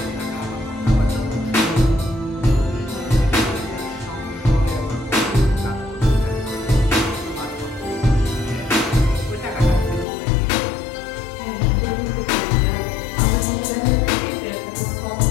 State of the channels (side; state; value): right; drops out; at 10.1 s